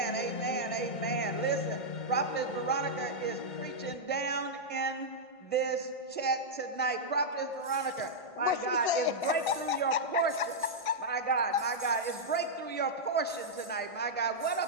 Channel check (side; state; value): right; late; 1.5 ms